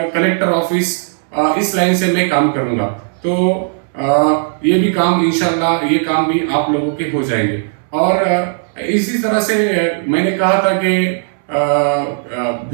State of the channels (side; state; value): left; silent; 69 dB below the other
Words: कलेक्टर ऑफिस इस लाइन से मैं काम करूंगा। तो ये भी काम इंशाल्लाह ये काम भी आप लोगों के हो जाएंगे। और इसी तरह से मैंने कहा था कि